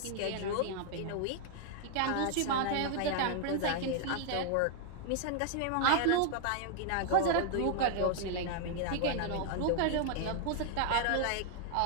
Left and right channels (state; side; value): different; both; correlation 0.00